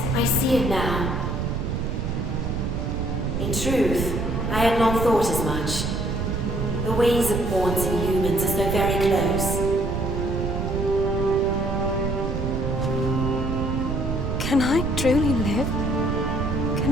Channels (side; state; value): right; noise; rumble, 2 dB below the sound